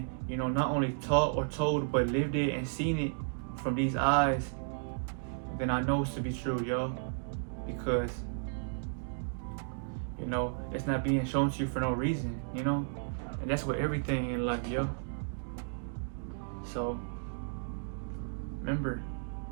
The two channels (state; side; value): silent; left; digital silence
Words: you know, not only taught or told, but lived it and seen it from these eyes, then I know it's to be true, yo. because you know it's not being shown to you for no reason, you know, and that's with everything in life, yo. So remember,